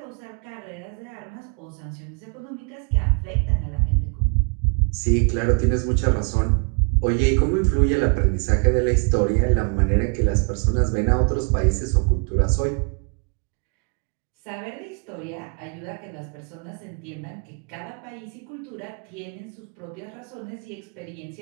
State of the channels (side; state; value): left; quieter; 34.5 dB